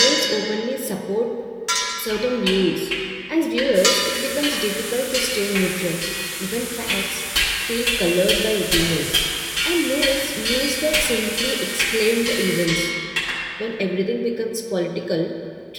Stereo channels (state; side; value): identical; both; correlation 1.00